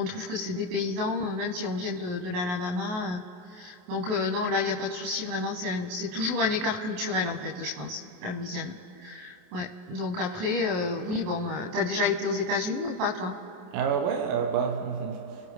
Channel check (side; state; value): left; late; 28 ms